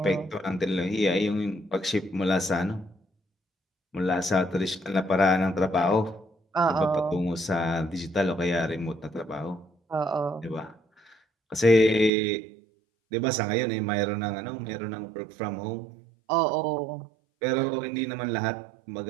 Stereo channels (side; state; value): left; drops out; at 12.1 s